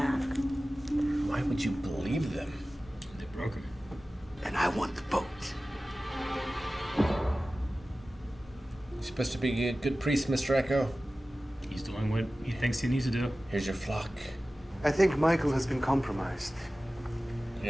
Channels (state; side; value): normal; both; correlation 0.96